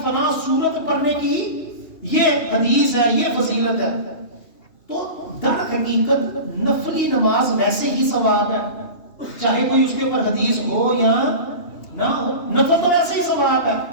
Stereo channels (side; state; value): right; late; 2.8 ms